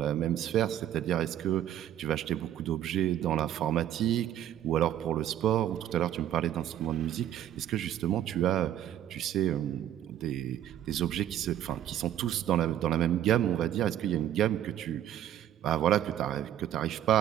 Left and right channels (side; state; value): left; quieter; 11.3 dB